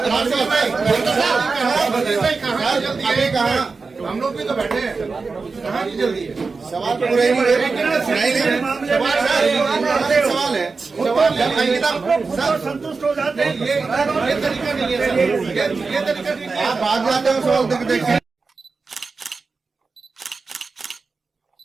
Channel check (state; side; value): quieter; left; 4.3 dB